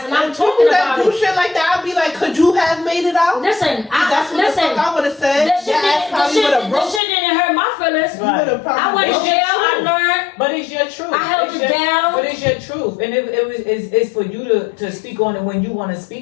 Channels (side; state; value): right; drops out; at 7.0 s